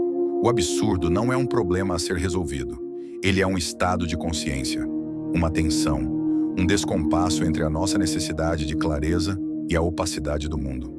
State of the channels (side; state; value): both; identical; correlation 1.00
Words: o absurdo não é um problema a ser resolvido. Ele é um estado de consciência, uma tensão, um descompasso entre a nossa necessidade de clareza e a opacidade do mundo.